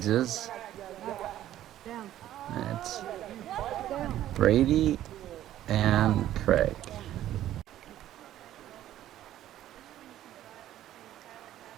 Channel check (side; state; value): left; quieter; 12.8 dB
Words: That's Brady and Craig.